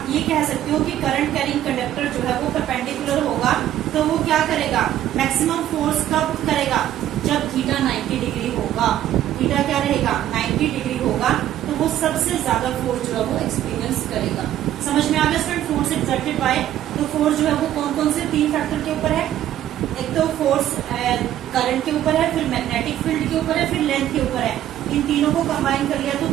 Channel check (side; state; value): left; quieter; 12.2 dB